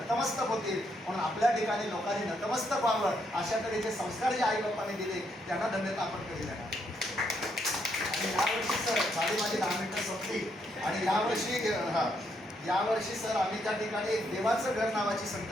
होतील. म्हणून आपल्या ठिकाणी लोकांनी नतमस्तक व्हावं अशा तऱ्हेचे संस्कार जे आई बाप्पाने दिले त्यांना धन्यता आपण कधी देणार. आणि यावर्षी सर झाली माझी 10 मिनिटं संपली, आणि यावर्षी सर आम्ही त्या ठिकाणी एक देवाचं घर नावाची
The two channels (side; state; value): both; normal; correlation 0.75